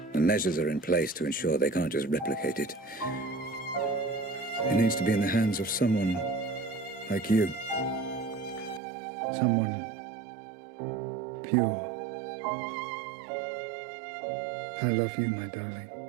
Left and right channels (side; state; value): left; drops out; at 8.8 s